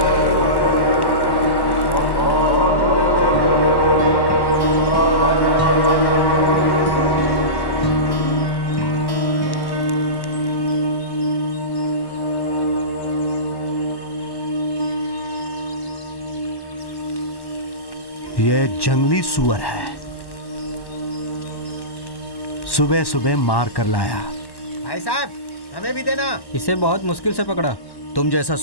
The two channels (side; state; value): right; late; 1.1 ms